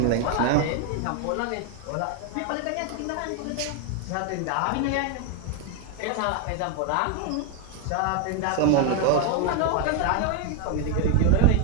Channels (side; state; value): both; different; correlation 0.01